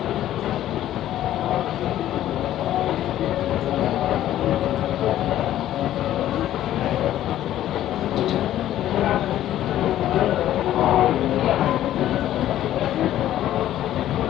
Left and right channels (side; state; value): right; quieter; 12.7 dB